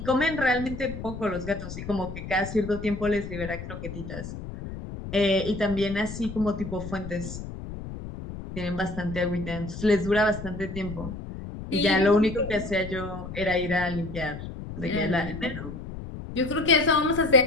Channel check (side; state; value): left; noise; rumble, 9 dB below the sound